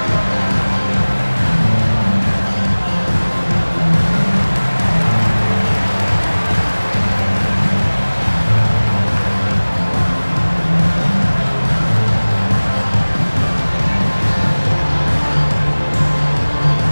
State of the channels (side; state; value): both; inverted; correlation -1.00